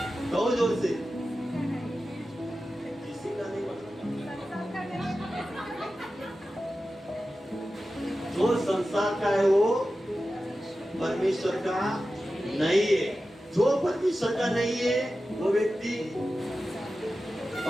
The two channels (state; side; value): normal; both; correlation 0.93